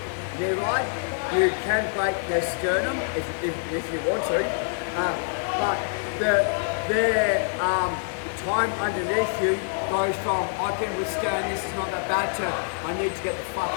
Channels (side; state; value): right; silent; 61 dB below the other